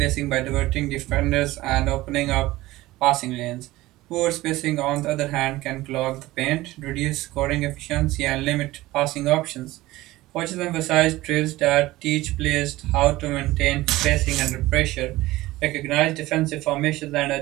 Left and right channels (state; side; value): quieter; left; 18.0 dB